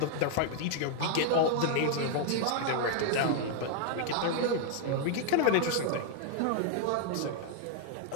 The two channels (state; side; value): different; both; correlation 0.00